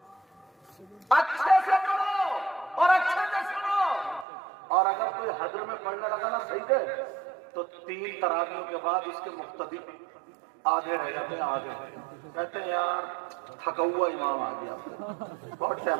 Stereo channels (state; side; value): drops out; left; at 4.2 s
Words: اچھے سے پڑھو اور اچھے سے سنو، اور اگر کوئی حضر میں پڑھنے لگا نا صحیح ہے تو 3 تراویحوں کے بعد اس کے مقتدی آدھے رہ جاتے ہیں، آدھے کہتے ہیں یار تھکا ہوا امام آ گیا، بہت